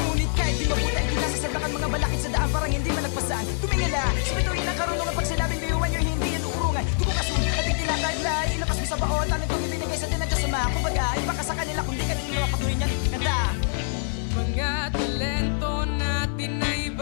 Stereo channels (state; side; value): silent; right; 56 dB below the other